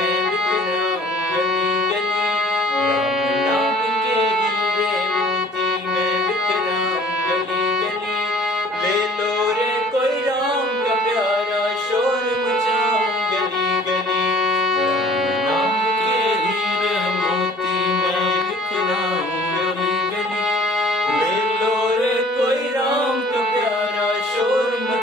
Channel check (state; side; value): normal; both; correlation 0.52